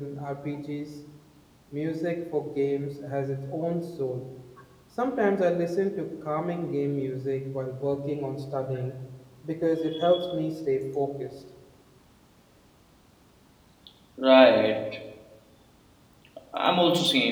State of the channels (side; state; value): both; identical; correlation 1.00